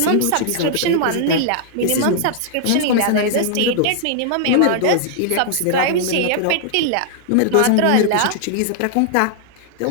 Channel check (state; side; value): different; both; correlation -0.01